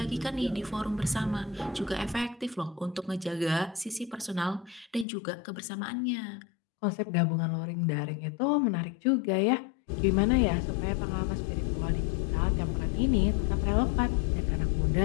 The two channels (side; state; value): right; drops out; at 5.1 s